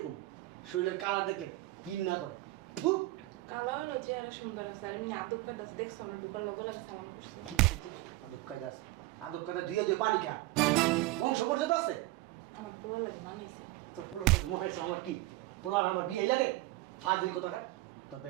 শরীরের কালার দেখলে ঘৃণা করে। ফু! কালো হলো চেহারা সুন্দর আছে, আর এমনি আদব কায়দা আছে, দেখছো আমরা ঢুকার লগে লগে সালাম করছি। কি করছিস? আদব কায়দা আছে? আদব কায়দা ধুয়ে ধুয়ে পানি খা, বংশ পর্যন্ত আছে। আমার পুরো লাগে মানাইছে। তোর পোলার কাছে মনে হয়েছে আমার কি পোলার আমার বিয়েই লাগে? ফাজিল কোথাকার। তোর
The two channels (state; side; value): quieter; left; 19.1 dB